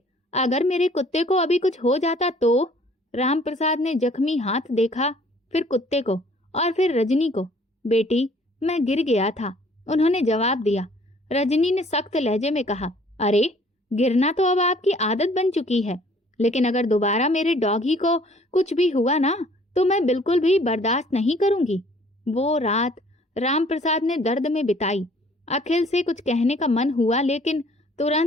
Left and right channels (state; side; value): normal; both; correlation 0.57